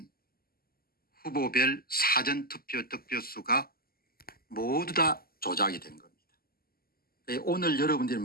후보별 사전투표 득표수가 모두 다 조작이 된 겁니다. 오늘 여러분들이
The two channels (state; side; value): late; right; 0.43 ms